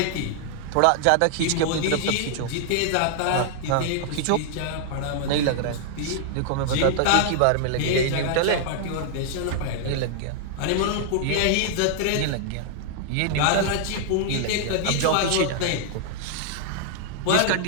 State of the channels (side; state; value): both; different; correlation 0.00